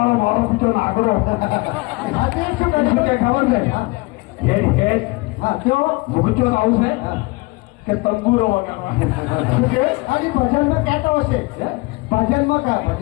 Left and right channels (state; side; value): quieter; right; 24.9 dB